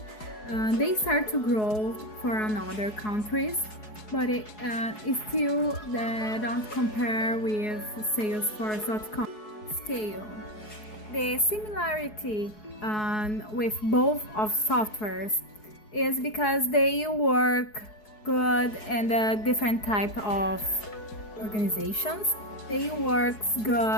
They start to grow for another countries, but it still don't compare with Salesforce.com scale. The similarity with both of softwares is because they work good in the different type of organizations. They work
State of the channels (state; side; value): late; right; 4.7 ms